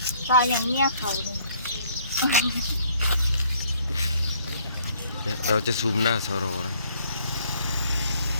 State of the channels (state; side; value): inverted; both; correlation -0.62